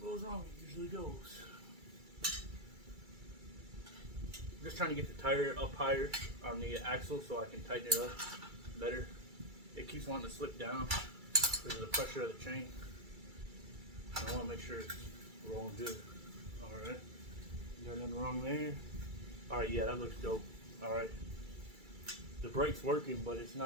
wrong, it usually goes. I'm just trying to get the tire up higher on the axle so I can tighten it up better. It keeps wanting to slip down because of the pressure of the chain. I want to make sure it's rolling good. Alright. You got nothing wrong there? Alright, yeah, that looks dope. Alright. The brake's working, but it's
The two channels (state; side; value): late; left; 2.3 ms